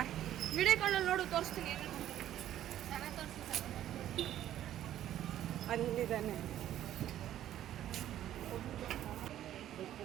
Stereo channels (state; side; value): quieter; left; 12.0 dB